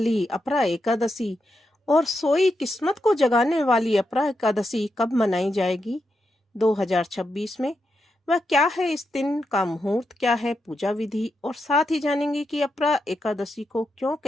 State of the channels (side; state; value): both; normal; correlation 0.85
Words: अपरा एकादशी और सोई किस्मत को जगाने वाली अपरा एकादशी कब मनाई जाएगी 2026 में? वह क्या है, इस दिन का मुहूर्त क्या है, पूजा विधि, और साथ ही जानेंगे कि अपरा एकादशी को क्यों